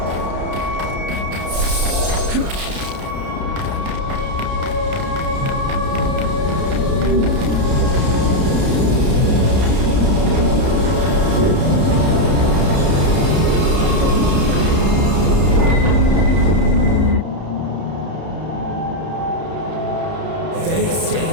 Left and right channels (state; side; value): late; left; 31 ms